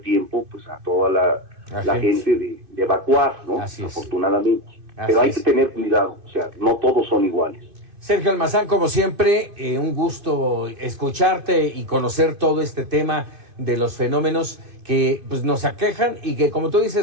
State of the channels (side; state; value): left; late; 2.5 ms